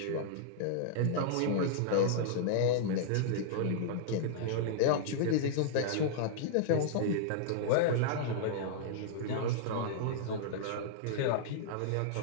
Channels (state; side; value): different; both; correlation -0.01